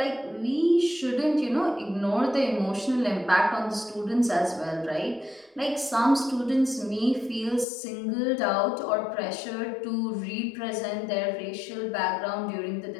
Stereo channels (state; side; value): drops out; right; at 7.7 s